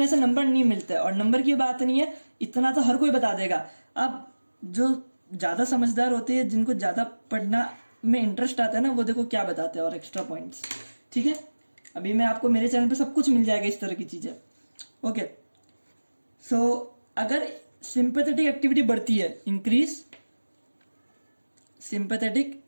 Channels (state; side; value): inverted; both; correlation -1.00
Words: से नंबर नहीं मिलते, और नंबर की बात नहीं है, इतना तो हर कोई बता देगा। अब जो ज्यादा समझदार होते हैं, जिनको ज्यादा पढ़ना में इंटरेस्ट आता है ना, वो देखो क्या बताते हैं और एक्स्ट्रा पॉइंट्स। ठीक है, अभी मैं आपको मेरे चैनल पे सब कुछ मिल जाएगा इस तरह की चीजें। ओके, सो अगर सिंपैथेटिक एक्टिविटी बढ़ती है, इंक्रीज सिंपैथेटिक